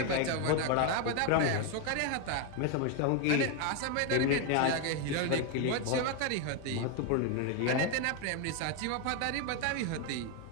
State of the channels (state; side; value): different; both; correlation 0.01